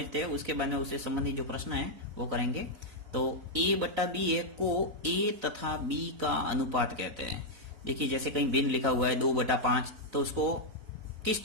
हैं, उसके बाद में उससे संबंधित जो प्रश्न है वो करेंगे। तो ए बट्टा बी है को ए तथा बी का अनुपात कहते हैं। देखिए जैसे कहीं भिन्न लिखा हुआ है 2/5, तो उसको किस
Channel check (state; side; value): late; left; 4.0 ms